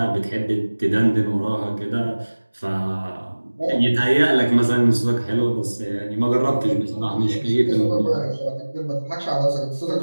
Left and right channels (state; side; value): inverted; both; correlation -1.00